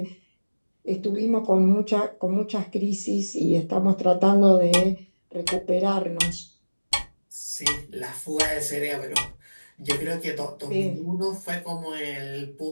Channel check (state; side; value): inverted; both; correlation -1.00